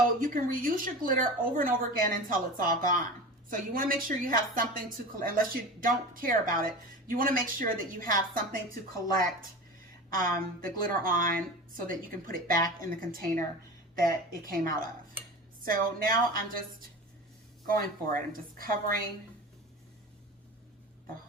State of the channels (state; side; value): normal; both; correlation 0.32